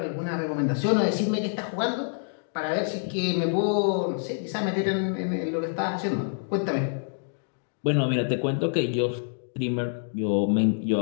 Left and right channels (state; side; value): silent; right; digital silence